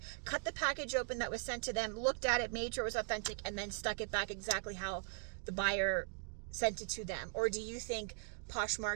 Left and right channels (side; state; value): left; silent; 51 dB below the other